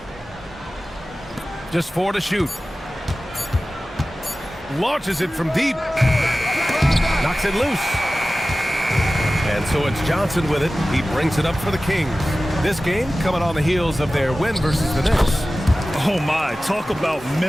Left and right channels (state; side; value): normal; both; correlation 0.96